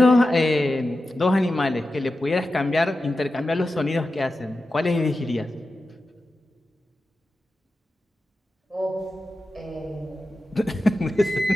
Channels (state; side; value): normal; both; correlation 0.92